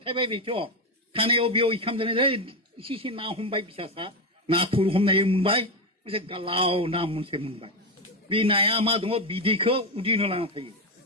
थाबाय बेथ' थानायाव बेयाव इखाम जानाय इसे ना हमबाय फिसासा नाथुर हमनाय मोनबाय मोनसे गालाव ना मोनसे मोनबाय बे नाया मा दङ बिदैखौ उदैनो लाना थायो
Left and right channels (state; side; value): normal; both; correlation 0.12